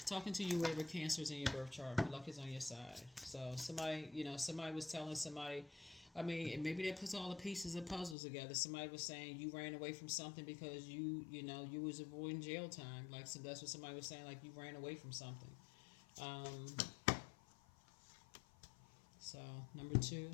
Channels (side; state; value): right; drops out; at 8.2 s